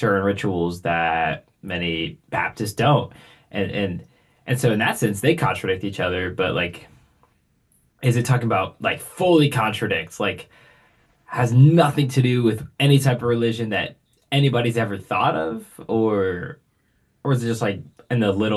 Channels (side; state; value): both; identical; correlation 1.00